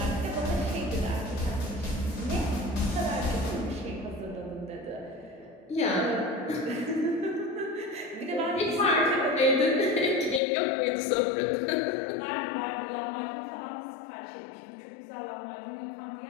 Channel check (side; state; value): right; drops out; at 10.4 s